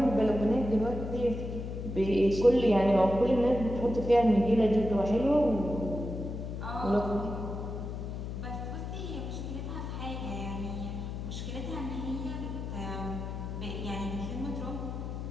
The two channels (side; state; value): left; noise; hum, 6 dB below the sound